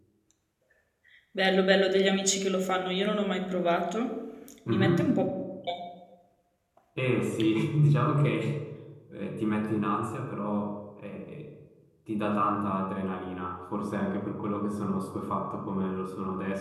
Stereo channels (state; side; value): identical; both; correlation 1.00